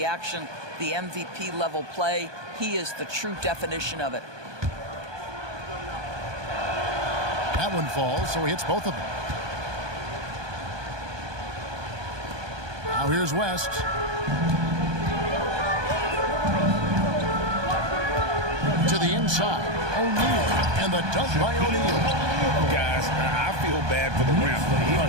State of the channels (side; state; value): left; late; 1.2 ms